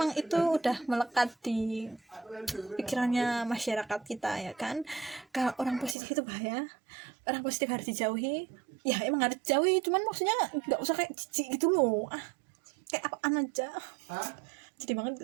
itu udah melekat di pikirannya masyarakat kita ya kan. Kalau orang positif itu bahaya, orang positif harus dijauhi, ya emang harus dijauhi, cuman maksudnya nggak usah kayak jijik gitu loh, kayak apaan aja. Jadi banget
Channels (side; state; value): left; drops out; at 6.0 s